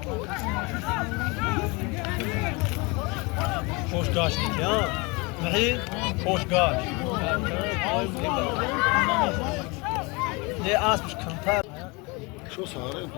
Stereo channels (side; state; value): right; quieter; 27.3 dB